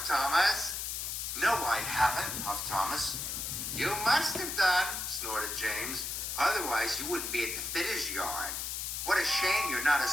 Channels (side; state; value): left; noise; hiss, 3 dB below the sound